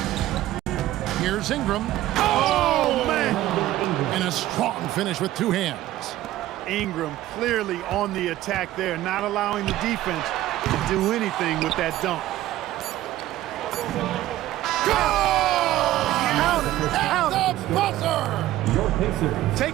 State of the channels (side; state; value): left; quieter; 14.8 dB